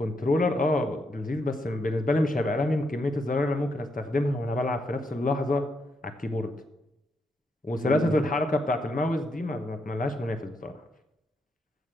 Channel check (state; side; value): normal; both; correlation 0.79